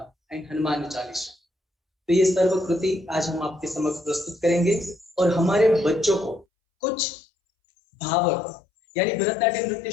एंड हनुमान चालीसा। तो ये सर्व कृति आज हम आपके समक्ष प्रस्तुत करेंगे। और हमारे बच्चों को कुछ भाव, यानी भरतनाट्यम नृत्य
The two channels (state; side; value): drops out; right; at 6.5 s